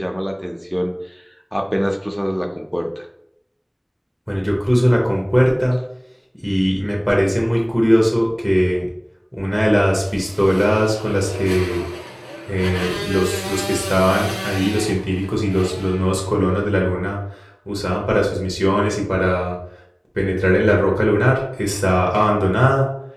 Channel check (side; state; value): both; identical; correlation 1.00